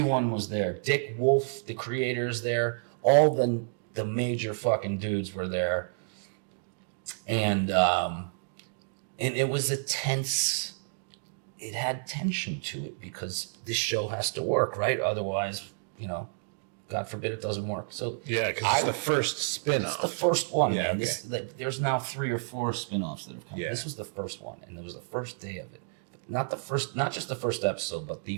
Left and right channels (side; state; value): left; silent; digital silence